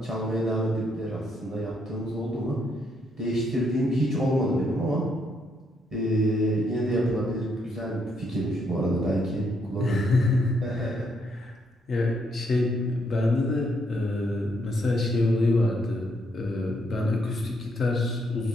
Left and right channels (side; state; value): both; normal; correlation 0.74